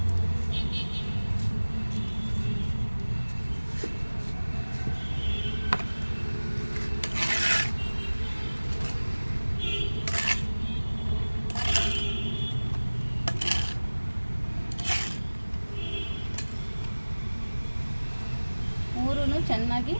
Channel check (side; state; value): both; inverted; correlation -1.00